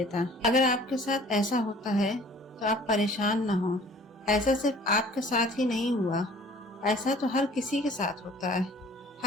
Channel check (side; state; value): both; normal; correlation 0.51